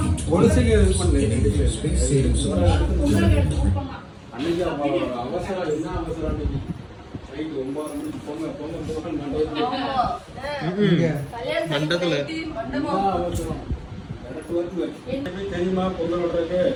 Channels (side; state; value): both; identical; correlation 1.00